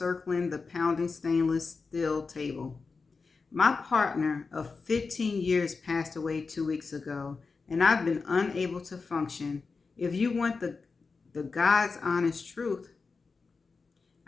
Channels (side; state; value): right; quieter; 4.5 dB